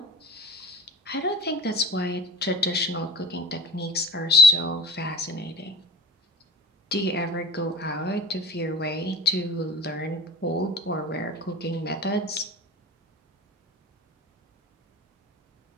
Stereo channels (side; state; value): both; normal; correlation 0.33